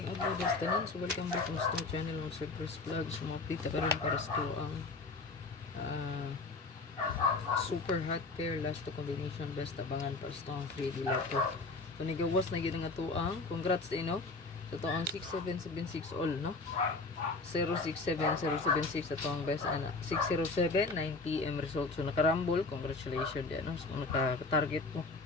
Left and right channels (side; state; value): right; quieter; 3.6 dB